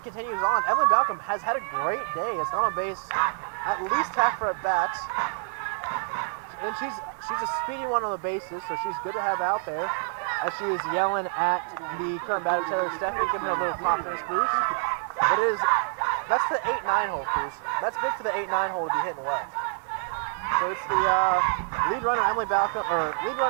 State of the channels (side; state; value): left; silent; 60 dB below the other